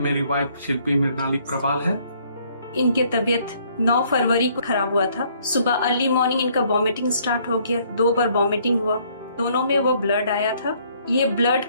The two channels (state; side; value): inverted; both; correlation -0.64